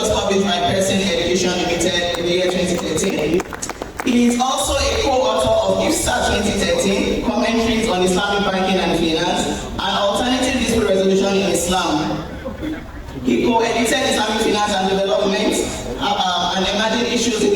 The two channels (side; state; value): both; identical; correlation 1.00